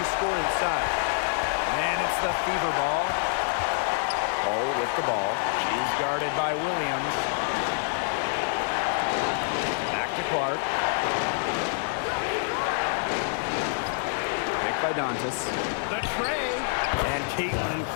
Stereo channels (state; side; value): silent; right; 60 dB below the other